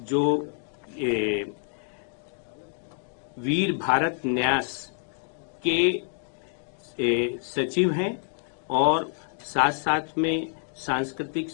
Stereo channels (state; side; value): silent; right; 60 dB below the other